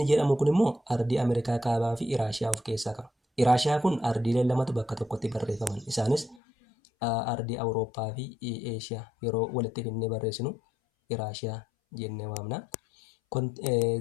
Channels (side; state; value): right; drops out; at 6.4 s